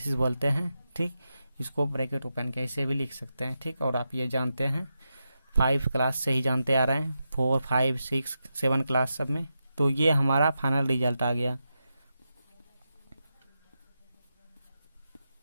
बोलते हैं। ठीक, इसको ब्रैकेट ओपन के ऐसे भी लिख सकते हैं। ठीक, और आप ये जानते हैं 5 क्लास से ही जानते आ रहे हैं, 4, 5, 6, 7 क्लास सब में। तो ये हमारा फाइनल रिजल्ट आ गया।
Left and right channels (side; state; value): both; inverted; correlation -0.88